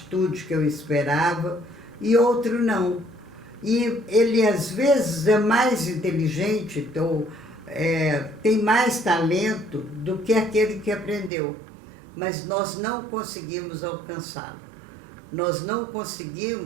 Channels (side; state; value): left; drops out; at 11.3 s